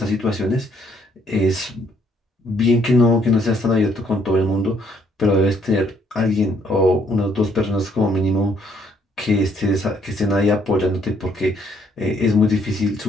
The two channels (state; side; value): normal; both; correlation 0.68